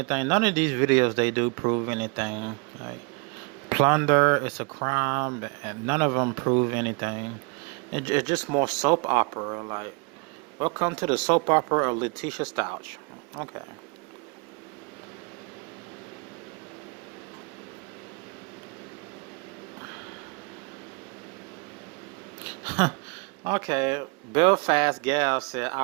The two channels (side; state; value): left; quieter; 32.4 dB